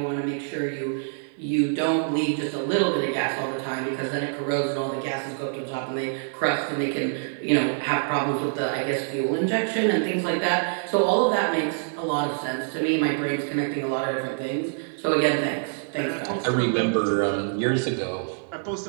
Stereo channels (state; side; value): silent; left; digital silence